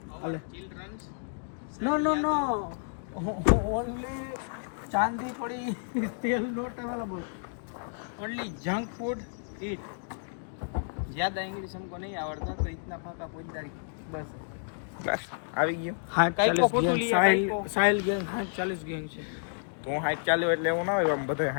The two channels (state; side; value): silent; right; digital silence